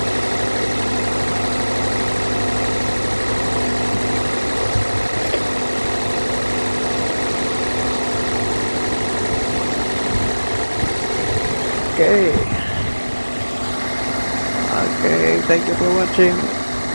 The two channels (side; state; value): both; inverted; correlation -1.00